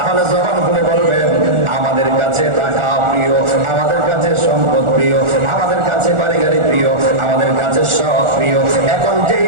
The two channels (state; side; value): late; left; 1.4 ms